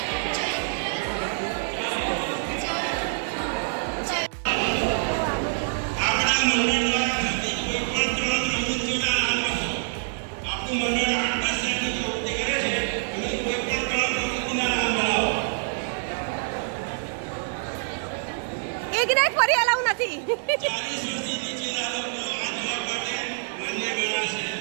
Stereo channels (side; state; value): left; silent; digital silence